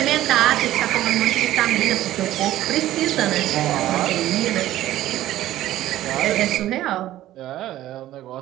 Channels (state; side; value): quieter; left; 14.2 dB